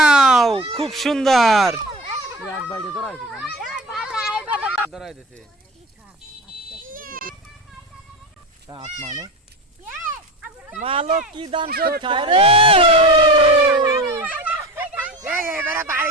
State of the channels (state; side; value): normal; both; correlation 0.30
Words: খুব সুন্দর। মালক কি দান সব খায় রে,